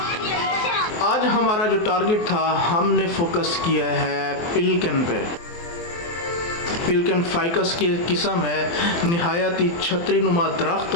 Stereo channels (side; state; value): right; late; 23 ms